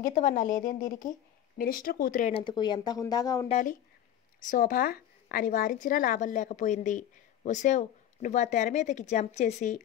లేదేం దీనికి? మినిస్టర్ కూతురైనందుకు ఎంత హుందాగా ఉండాలి? శోభ అని వారించినా లాభం లేకపోయింది. ఒసేవ్, నువ్వు ఆ తెర మీదకి జంప్ చేసి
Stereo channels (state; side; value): quieter; right; 10.9 dB